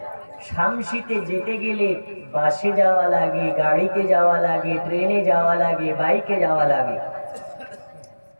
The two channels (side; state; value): both; inverted; correlation -1.00